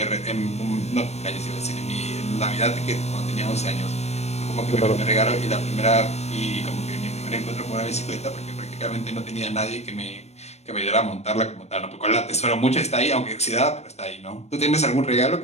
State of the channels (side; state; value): right; late; 0.31 ms